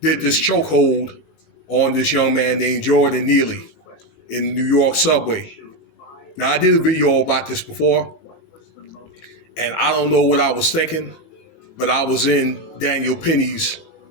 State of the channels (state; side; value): late; right; 18 ms